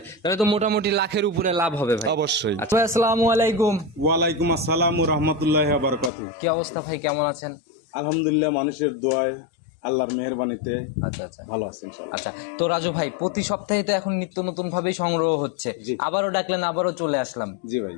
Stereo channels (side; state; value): right; drops out; at 6.1 s